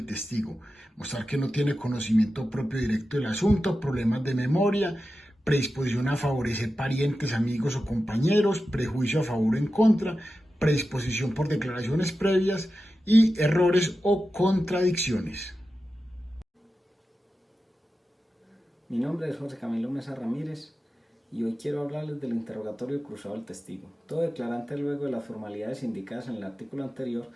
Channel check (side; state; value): both; normal; correlation 0.92